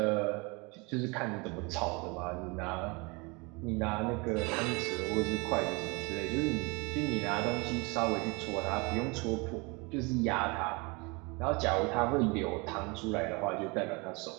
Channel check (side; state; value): left; quieter; 28.2 dB